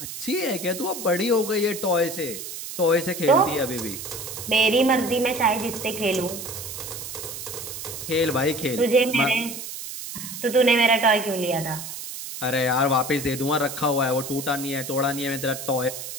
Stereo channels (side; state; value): right; noise; hiss, 9 dB below the sound